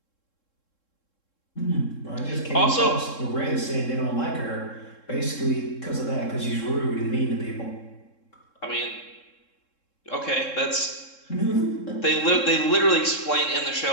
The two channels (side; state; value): right; late; 3.7 ms